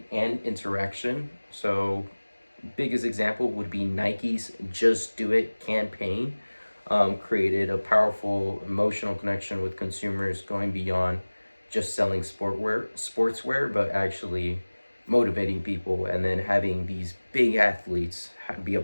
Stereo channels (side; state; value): both; inverted; correlation -1.00